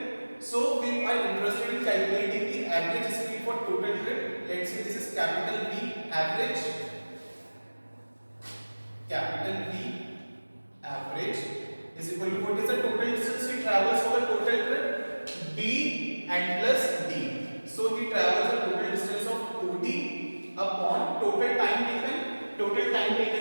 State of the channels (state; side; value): inverted; both; correlation -1.00